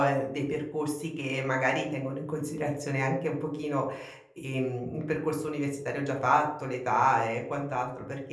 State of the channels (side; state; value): both; identical; correlation 1.00